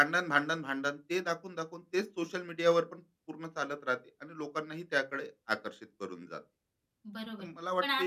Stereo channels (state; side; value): identical; both; correlation 1.00